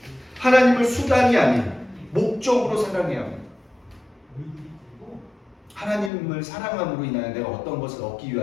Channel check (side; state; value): right; drops out; at 6.1 s